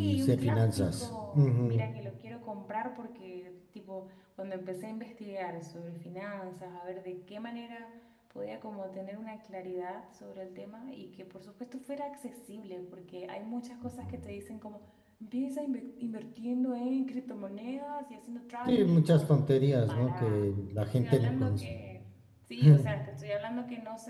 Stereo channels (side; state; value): both; identical; correlation 1.00